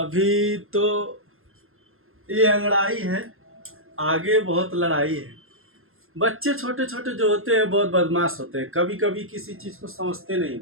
तो ये अंगड़ाई है, आगे बहुत लड़ाई है। बच्चे छोटे छोटे जो होते हैं बहुत बदमाश होते हैं, कभी कभी किसी चीज़ को समझते नहीं,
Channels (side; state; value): left; late; 0.61 ms